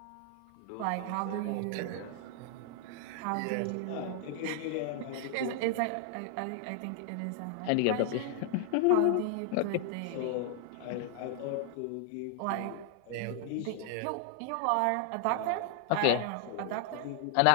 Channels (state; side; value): different; both; correlation 0.00